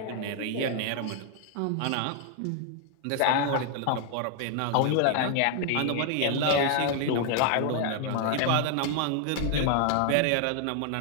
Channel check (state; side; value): different; both; correlation 0.00